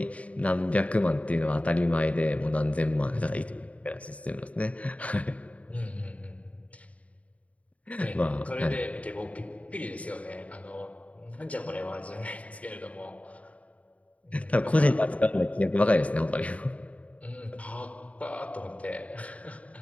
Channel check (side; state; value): right; late; 0.067 ms